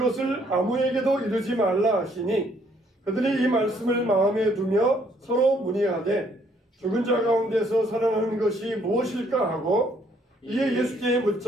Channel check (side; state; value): both; normal; correlation 0.66